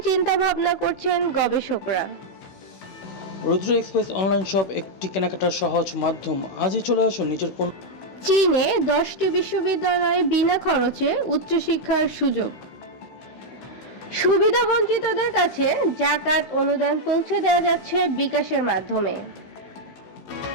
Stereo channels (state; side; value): late; right; 16 ms